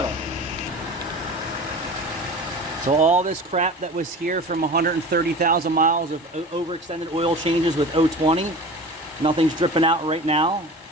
So all this crap that was here from 130,000 miles of overextended oil changes with 020, nothing's dripping out right now.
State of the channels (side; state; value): both; normal; correlation 0.35